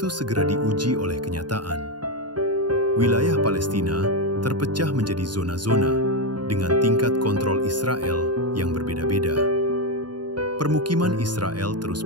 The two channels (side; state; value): left; late; 0.71 ms